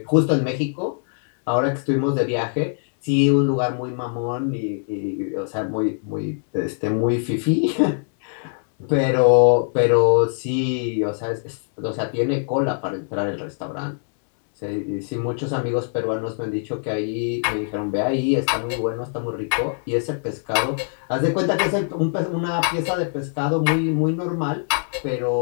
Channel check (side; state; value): right; silent; digital silence